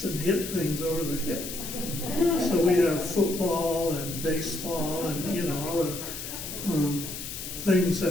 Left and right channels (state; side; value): noise; left; hiss, 8 dB below the sound